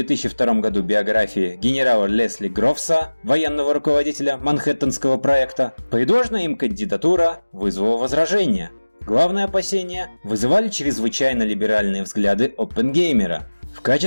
году биографии генерала Лесли Грофса, военного руководителя Манхэттенского проекта, предложенная им кандидатура вызвала возражения. Главные опасения вызывали чрезвычайно либеральные взгляды Оппенгеймера. В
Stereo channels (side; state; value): both; inverted; correlation -1.00